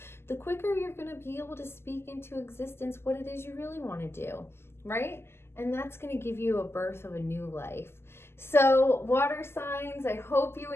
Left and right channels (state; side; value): late; right; 0.12 ms